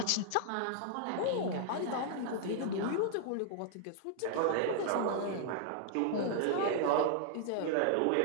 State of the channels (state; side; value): different; both; correlation -0.01